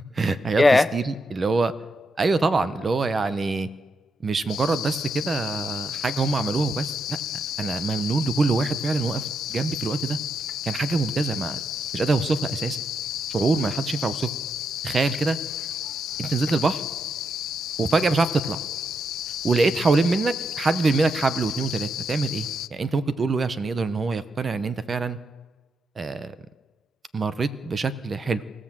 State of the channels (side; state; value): both; normal; correlation 0.81